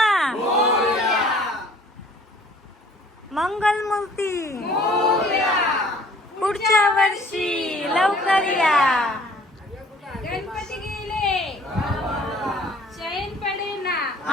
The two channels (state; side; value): normal; both; correlation 0.54